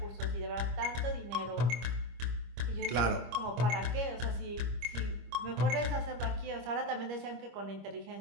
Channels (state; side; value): late; left; 25 ms